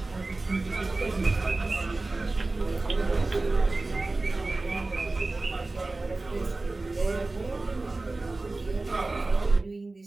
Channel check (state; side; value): quieter; left; 3.2 dB